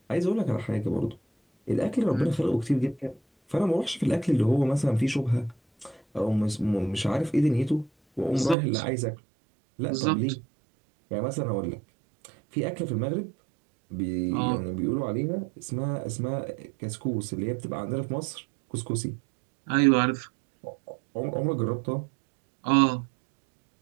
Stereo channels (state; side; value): drops out; left; at 8.6 s